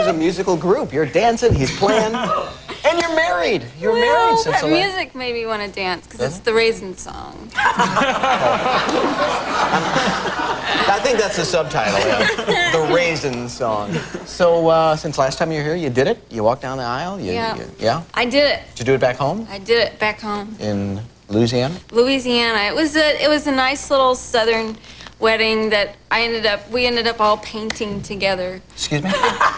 a musical group. You're dancing, he's playing, and you're married. You're married since the music made me want to dance because it's the Raisin song. I think that's the subtitle, yeah. The Raisin song. So, since last time you were here, you did it? You walked down the aisle? Yeah? I did it. Did you do it back home? I did it back home. In Louisiana? Louisiana. It was a nice little southern wedding that we ended up all painting together. Excuse me?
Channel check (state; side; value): identical; both; correlation 1.00